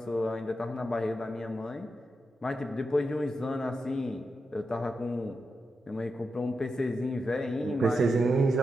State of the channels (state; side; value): normal; both; correlation 0.87